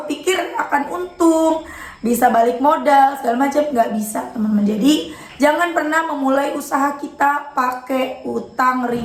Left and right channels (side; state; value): both; identical; correlation 1.00